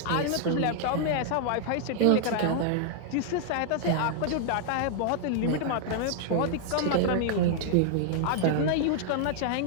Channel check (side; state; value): both; different; correlation 0.00